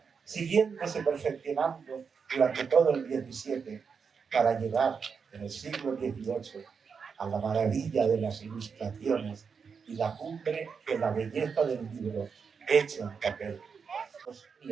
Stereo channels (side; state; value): left; quieter; 5.9 dB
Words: siguiéndose perfeccionando durante todo el XVII, para llegar en el siglo XVIII a la maravilla de las ilustraciones y la cumbre de la belleza del libro hecho en papel.